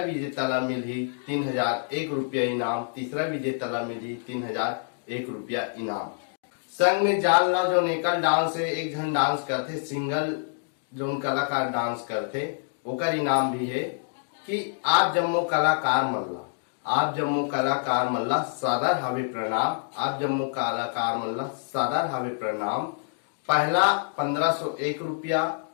ला मिली 3,001 रुपया इनाम, तीसरा विजेता ला मिली 3,001 रुपया इनाम। संग में जान लो जो एकल डांस है, एक जन डांस करते, सिंगल जो कलाकार डांस करते, ओकर इनाम भी है कि आप जम्मो कलाकार मल्ला, आप जम्मो कलाकार मल्ला सादर हावे प्रणाम, आप जम्मो कलाकार मल्ला सादर हावे प्रणाम। पहला 1,501 रुपया,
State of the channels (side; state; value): right; silent; digital silence